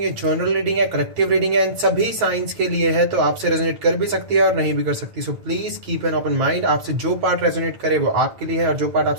जर्नल रीडिंग है, कलेक्टिव रीडिंग है, इन सभी साइंस के लिए है, तो आपसे रेजोनेट कर भी सकती है और नहीं भी कर सकती। So please keep an open mind. आपसे जो पार्ट रेजोनेट करे वो आपके लिए है और जो पार्ट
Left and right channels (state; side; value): late; left; 9.2 ms